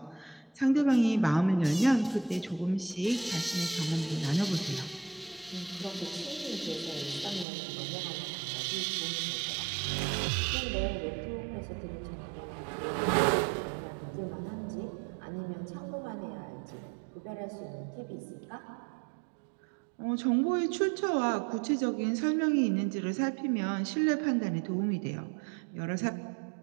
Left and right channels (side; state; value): left; drops out; at 7.5 s